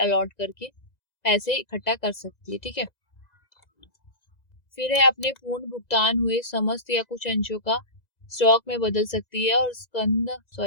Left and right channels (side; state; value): right; late; 2.0 ms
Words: करके पैसे इकट्ठा कर सकती है। ठीक है, फिर है अपने पूर्ण भुगतान हुए समस्त या कुछ अंशों का स्टॉक में बदल सकती है, और